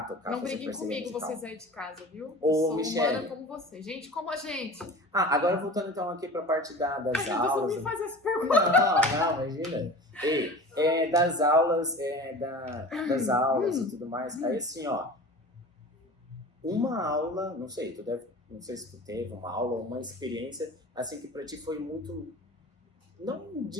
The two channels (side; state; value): both; normal; correlation 0.37